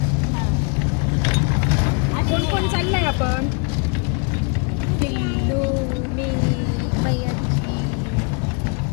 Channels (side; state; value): right; quieter; 35.8 dB